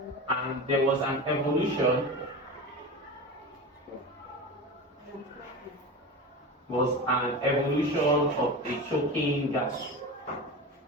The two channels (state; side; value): normal; both; correlation 0.27